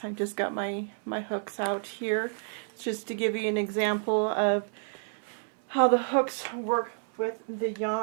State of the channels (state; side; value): silent; left; 57 dB below the other